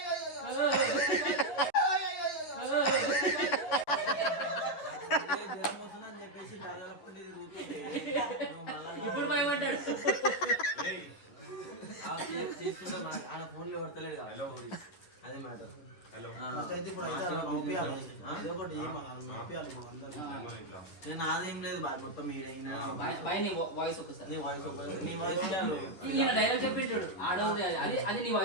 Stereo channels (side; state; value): right; late; 11 ms